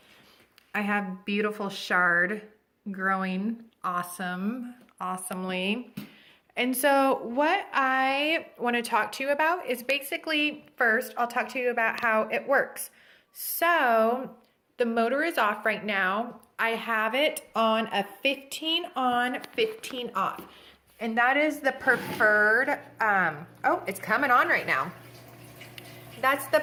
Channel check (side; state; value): both; identical; correlation 1.00